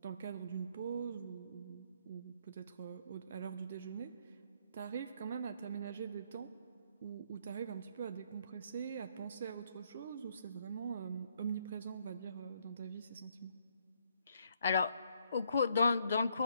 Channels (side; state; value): both; inverted; correlation -0.70